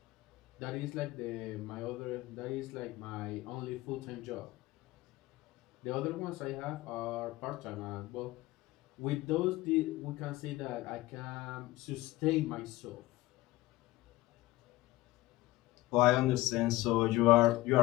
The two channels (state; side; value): quieter; right; 18.4 dB